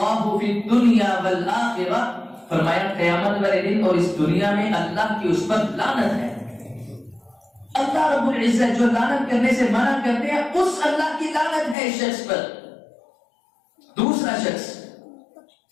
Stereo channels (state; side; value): drops out; right; at 11.8 s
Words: فی الدنیا والآخرہ, فرمایا قیامت والے دن اور اس دنیا میں اللہ کی اس پر لعنت ہے. اللہ رب العزت جو لعنت کرنے سے منع کرتے ہیں اس اللہ کی لعنت ہے اس شخص پر. دوسرا شخص